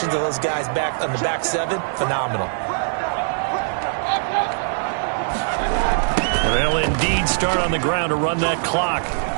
of those guys back on the back 7, phenomenal. They'll indeed start on the ground to run that clock.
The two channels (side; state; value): left; silent; digital silence